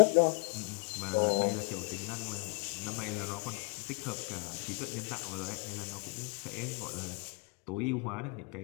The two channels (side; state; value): right; quieter; 32.8 dB